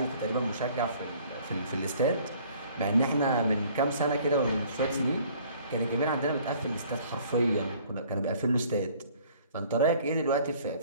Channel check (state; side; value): inverted; both; correlation -0.56